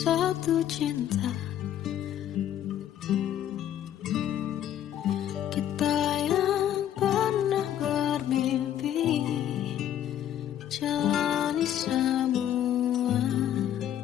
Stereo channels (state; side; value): quieter; right; 10.9 dB